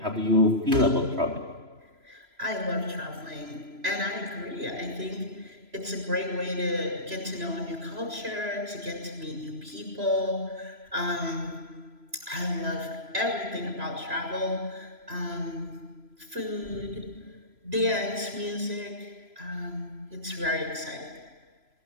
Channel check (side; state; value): left; late; 3.0 ms